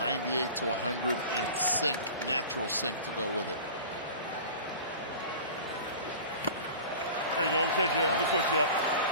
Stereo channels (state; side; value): inverted; both; correlation -0.38